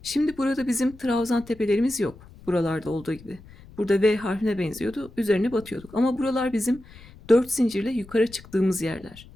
Şimdi burada bizim trabzan tepelerimiz yok. Buralarda olduğu gibi. Burada V harfine benziyordu. Üzerine batıyorduk. Ama buralar bizim 4 zincirle yukarı çıktığımız yerler.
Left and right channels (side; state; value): left; noise; rumble, 21 dB below the sound